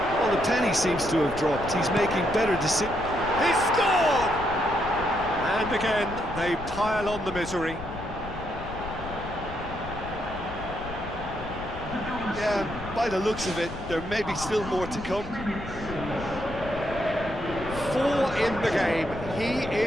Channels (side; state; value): left; noise; rumble, 12 dB below the sound